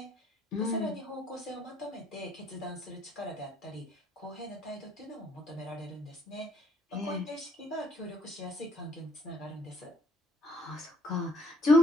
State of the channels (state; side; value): normal; both; correlation 0.65